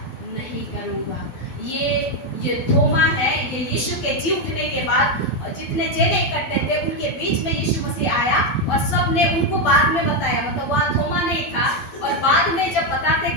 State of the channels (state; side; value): late; right; 12 ms